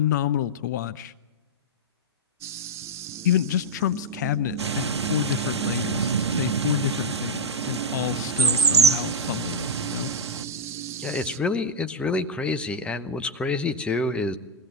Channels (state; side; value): normal; both; correlation -0.04